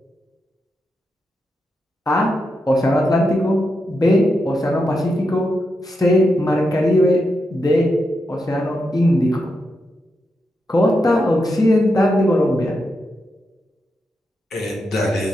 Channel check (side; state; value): both; normal; correlation 0.86